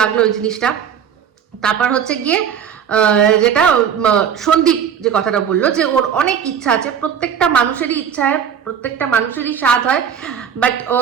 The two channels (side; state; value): left; quieter; 8.0 dB